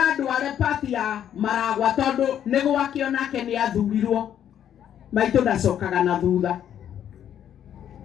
ndware party ya Maragwa tondũ nĩ gwake onake nĩ athurirwo maitũ ndacokaga na thutha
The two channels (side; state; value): right; quieter; 9.9 dB